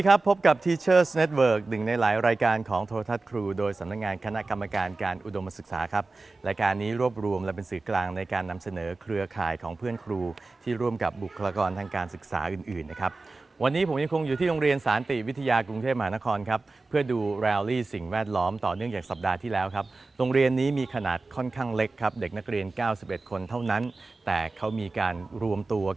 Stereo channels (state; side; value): quieter; left; 3.5 dB